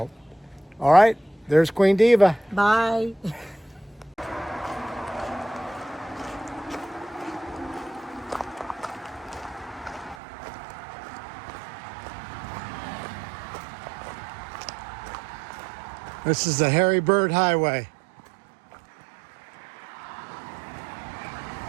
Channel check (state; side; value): drops out; left; at 10.2 s